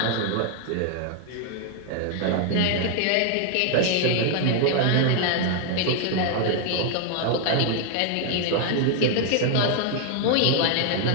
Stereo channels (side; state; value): both; different; correlation 0.00